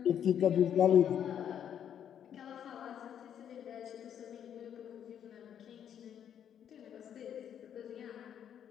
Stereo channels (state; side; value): quieter; right; 9.2 dB